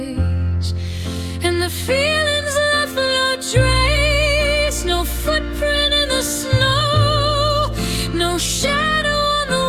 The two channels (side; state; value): both; identical; correlation 1.00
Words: And the feelings left no trace, no footprint in the snow, no shadow on the